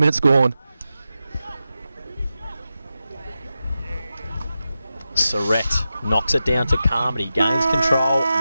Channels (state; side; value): inverted; both; correlation -0.92